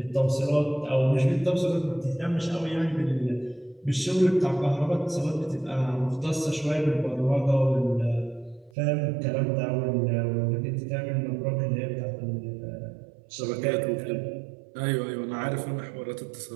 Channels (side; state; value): left; drops out; at 8.7 s